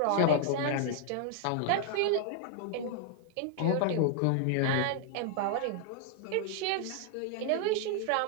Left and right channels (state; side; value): different; both; correlation 0.00